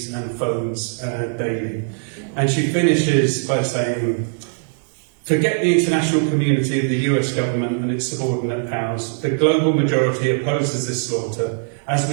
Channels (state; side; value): silent; left; 65 dB below the other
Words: and phones daily. And she finishes by saying, forget the international community of the US government and its subordinate powers. The global majority opposes this slaughter, as